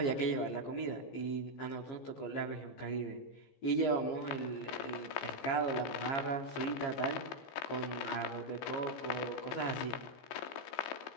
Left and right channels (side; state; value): right; late; 15 ms